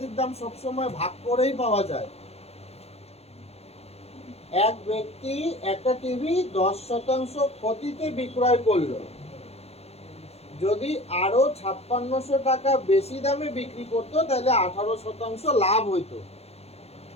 দাম সবসময় ভাগ করেই পাওয়া যায়। এক ব্যক্তি একটা টিভি 10% ক্ষতিতে বিক্রয় করলো। যদি আরো 5600 টাকা বেশি দামে বিক্রি করতো তাহলে 18% লাভ হইতো।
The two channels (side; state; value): right; late; 0.30 ms